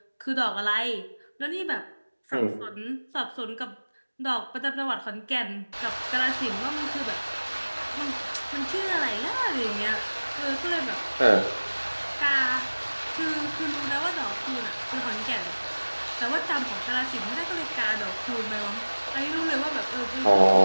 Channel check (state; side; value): inverted; both; correlation -1.00